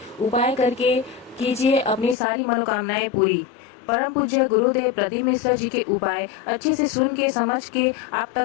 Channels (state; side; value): drops out; right; at 2.1 s